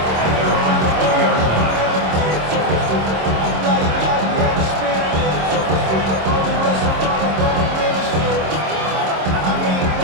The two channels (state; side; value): late; left; 26 ms